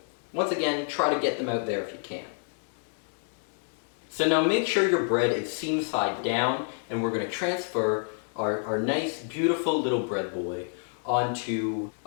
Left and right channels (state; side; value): silent; right; 59 dB below the other